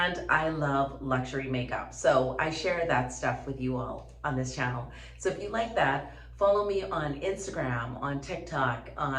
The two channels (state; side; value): identical; both; correlation 1.00